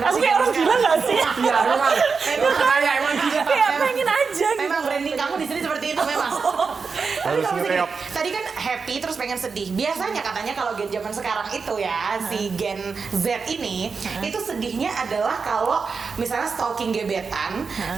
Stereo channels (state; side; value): quieter; left; 5.1 dB